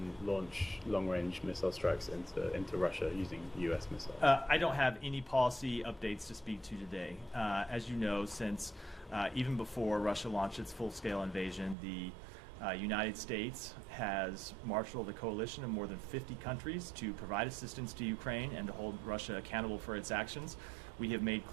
launch long-range missile strikes into Russia using U.S. missiles? I don't have any policy updates to speak to today. As you know, since even before Russia launched its full-scale invasion, the United States has marshaled a coalition of more than 50 countries to provide assistance to Ukraine and to hold Russia accountable for its actions. We have made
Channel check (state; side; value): drops out; left; at 11.8 s